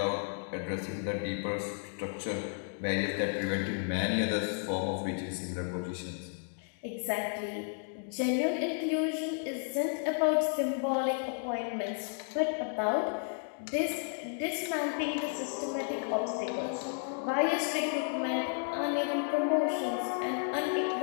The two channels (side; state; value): right; silent; 56 dB below the other